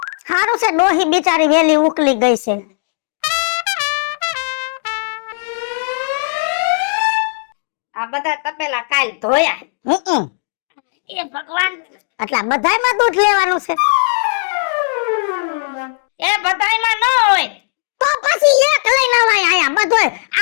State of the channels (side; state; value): right; silent; digital silence